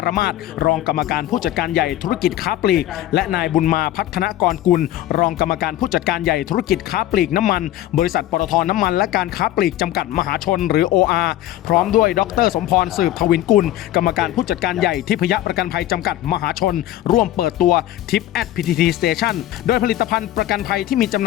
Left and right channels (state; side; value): quieter; right; 13.6 dB